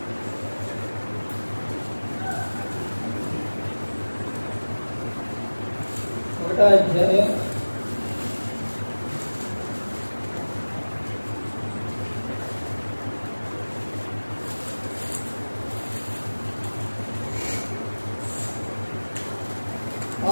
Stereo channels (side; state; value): both; inverted; correlation -1.00